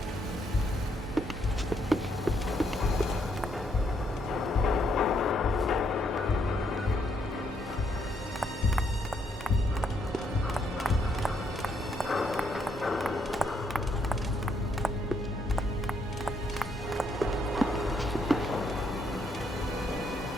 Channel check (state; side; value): normal; both; correlation 0.73